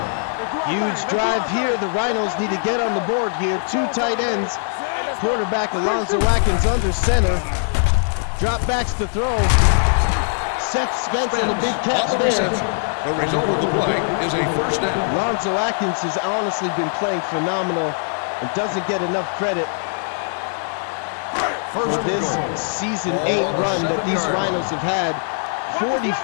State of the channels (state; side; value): silent; right; digital silence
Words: Huge drive here. The Rhinos need to get on the board here. 2 tight ends. Quarterback Alonzo Atkins under center. Drop backs to throw. Seth Spence and a big catch there. The result of the play is a first down. Alonzo Atkins has honestly been playing phenomenal and doesn't get enough credit for this season 8 run that these Rhinos have had.